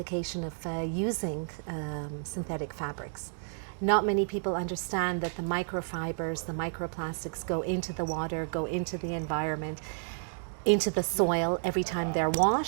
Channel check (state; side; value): silent; left; digital silence